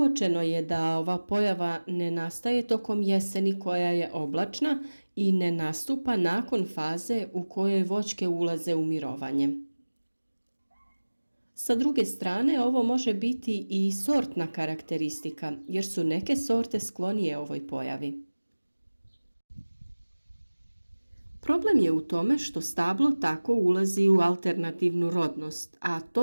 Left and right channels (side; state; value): both; inverted; correlation -1.00